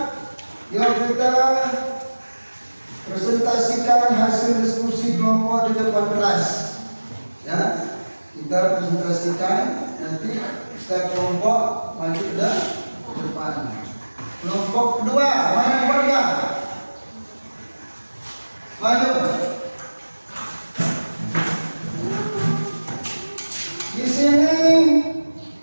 yuk kita presentasikan hasil diskusi kelompok di depan kelas. Ya, kita presentasikan nanti setiap kelompok maju ke depan. Kelompok kedua, mana yang warga? Maju. Di sini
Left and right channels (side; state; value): both; inverted; correlation -1.00